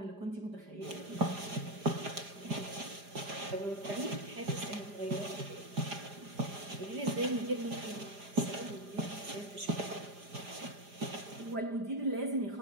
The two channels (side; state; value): left; late; 4.9 ms